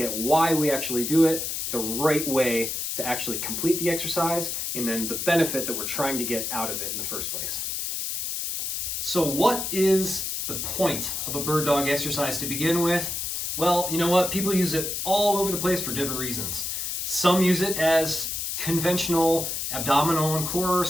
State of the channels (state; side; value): noise; left; hiss, 3 dB below the sound